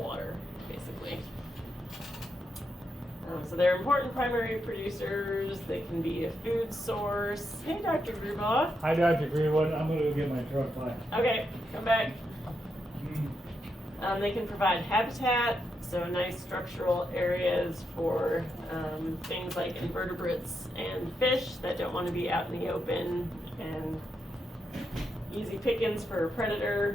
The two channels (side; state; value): both; normal; correlation 0.83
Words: basically. So they're important primary producers. They can be a food source. Hey, Dr. Grubaugh. Hi, Dr. Greenwood. I'm going to go get my truck back. Okay, come back. They can provide habitat, so nice structural areas for things like invertebrates and fish that don't want to be out in the open, and easy pickings for a